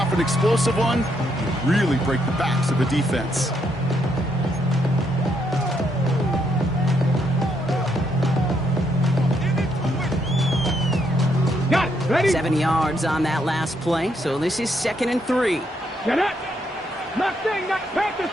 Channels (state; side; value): normal; both; correlation 0.75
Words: an explosive one, you really break the backs of the defense. Got it. Ready? 7 yards on that last play, so this is 2nd and 3. Get up. Mustang, not Panther